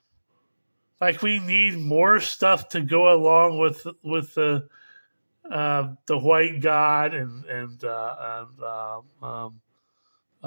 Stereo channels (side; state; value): both; inverted; correlation -1.00